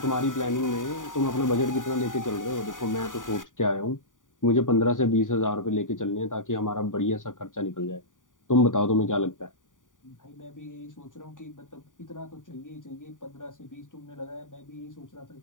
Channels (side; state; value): right; late; 0.88 ms